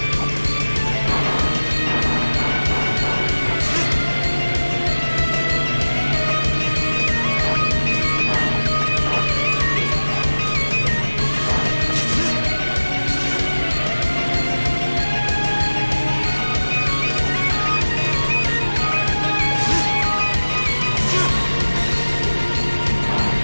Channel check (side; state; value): both; inverted; correlation -1.00